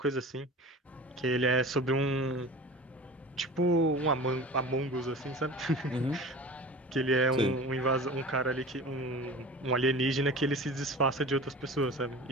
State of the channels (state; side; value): normal; both; correlation 0.37